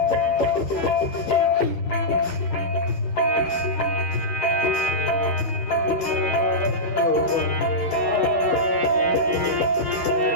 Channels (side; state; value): right; late; 11 ms